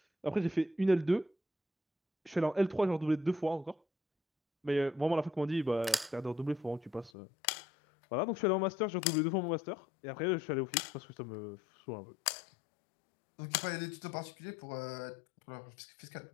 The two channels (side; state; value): right; drops out; at 7.1 s